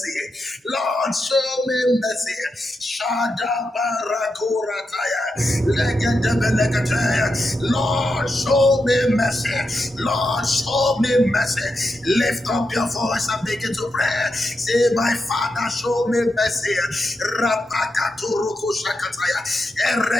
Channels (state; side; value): normal; both; correlation 0.86